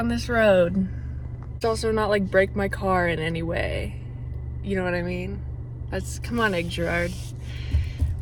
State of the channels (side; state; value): both; identical; correlation 1.00